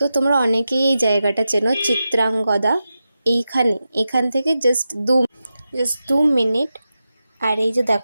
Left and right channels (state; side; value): inverted; both; correlation -0.91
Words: তোমরা অনেকেই এই জায়গাটা চেনো, চিত্রাঙ্গদা। এখান থেকে জাস্ট 2 মিনিট। আর এই যে